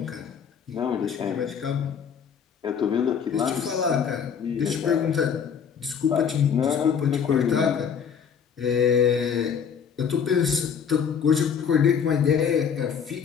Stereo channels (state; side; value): quieter; right; 7.2 dB